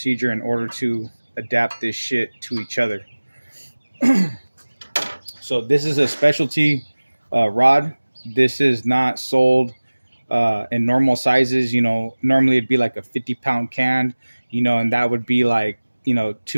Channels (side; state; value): both; inverted; correlation -1.00